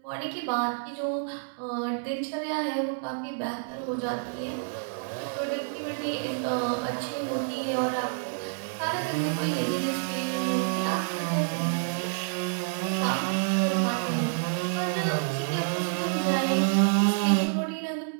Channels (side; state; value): left; silent; 59 dB below the other